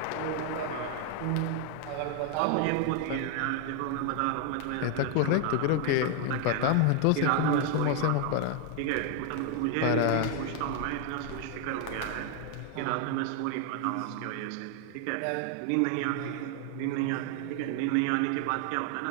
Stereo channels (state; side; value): different; both; correlation 0.01